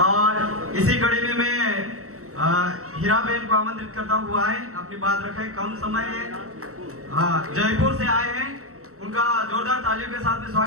इसी कड़ी में मैं हीरा बहन को आमंत्रित करता हूँ, वो आए अपनी बात रखें, कम समय है। हाँ, जयपुर से आए हैं, उनका जोरदार तालियों के साथ में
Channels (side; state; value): left; late; 0.64 ms